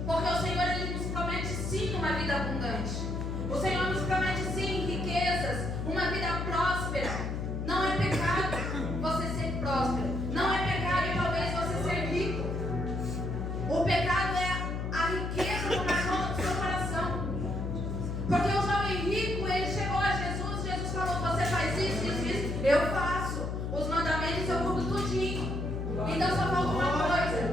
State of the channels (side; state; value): left; noise; hum, 3 dB below the sound